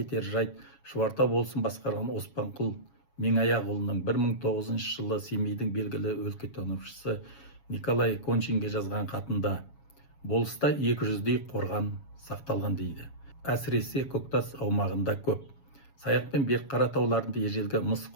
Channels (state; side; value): late; right; 7.2 ms